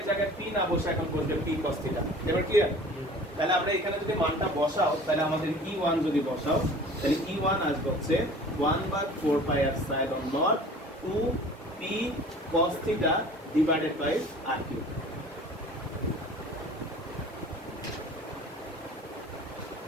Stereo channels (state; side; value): normal; both; correlation 0.45